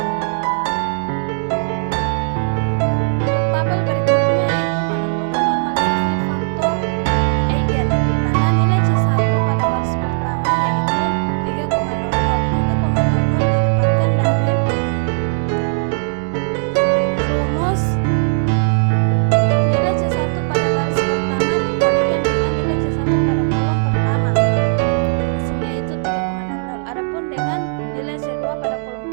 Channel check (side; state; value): left; silent; digital silence